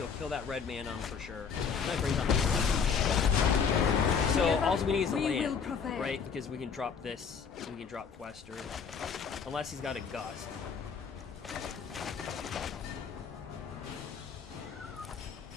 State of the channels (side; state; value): right; quieter; 6.3 dB